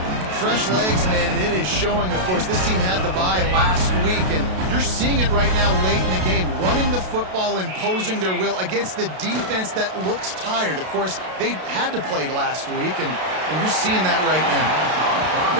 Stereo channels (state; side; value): late; left; 32 ms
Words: Fresh legs, man, and it is showing, of course. This team had the bye last week, and you're seeing it right now late in the game. Running the football, imposing their will against the defense that looks tired. Of course, they had to play last week, and you're seeing that right now.